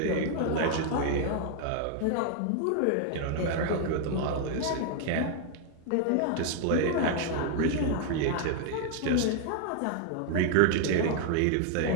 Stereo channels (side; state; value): both; different; correlation 0.00